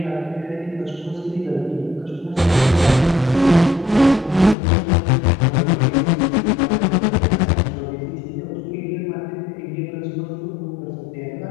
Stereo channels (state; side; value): drops out; right; at 4.5 s